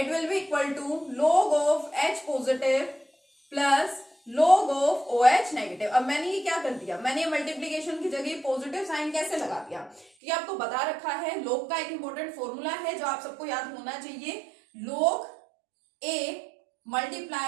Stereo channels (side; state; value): left; drops out; at 10.1 s